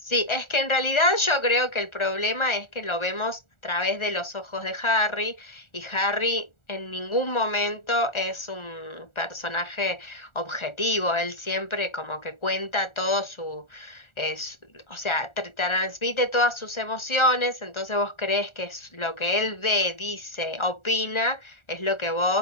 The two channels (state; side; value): late; right; 1.4 ms